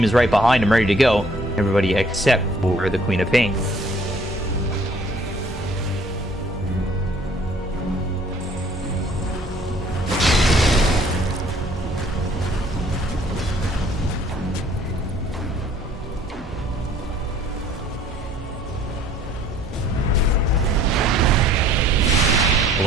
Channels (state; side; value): normal; both; correlation 0.58